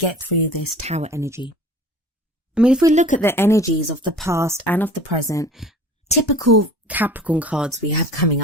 through this Tower energy. I mean, if we look at the energies of the past and of the present, typical Capricorn cards we have coming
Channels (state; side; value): normal; both; correlation 0.44